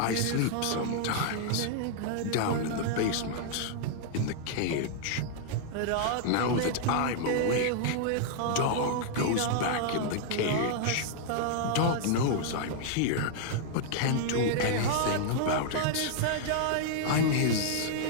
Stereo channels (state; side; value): different; both; correlation -0.01